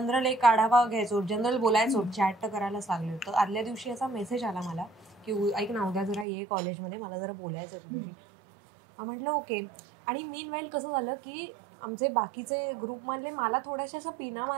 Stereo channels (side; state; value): left; drops out; at 6.2 s